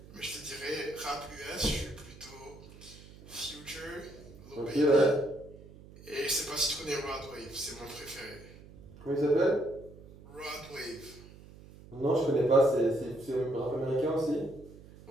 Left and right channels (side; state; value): right; noise; hum, 19 dB below the sound